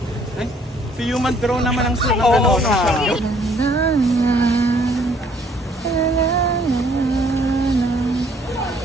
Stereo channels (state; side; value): normal; both; correlation 0.62